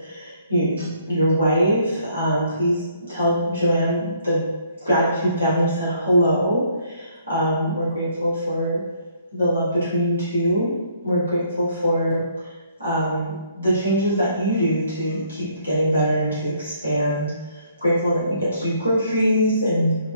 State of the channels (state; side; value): inverted; both; correlation -0.65